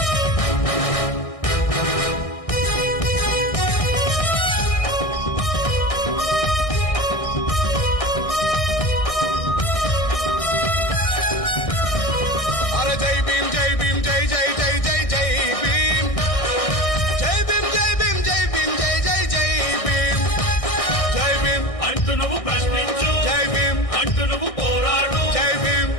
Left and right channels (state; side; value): late; right; 1.6 ms